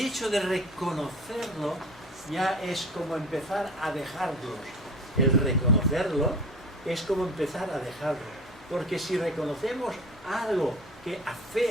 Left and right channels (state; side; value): normal; both; correlation 0.39